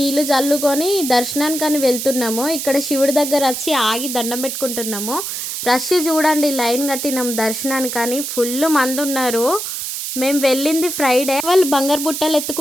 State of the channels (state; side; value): noise; right; hiss, 5 dB below the sound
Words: చల్లుకొని దర్శనానికి వెళ్తున్నాము. ఇక్కడ శివుడి దగ్గర వచ్చి ఆగి దండం పెట్టుకుంటున్నాము. రష్ చూడండి, లైన్ కట్టినాము దర్శనానికి. ఫుల్ మంది ఉన్నారు. మేము వెళ్ళింది ఫ్రైడే. వాళ్ళు బంగారు బుట్టలు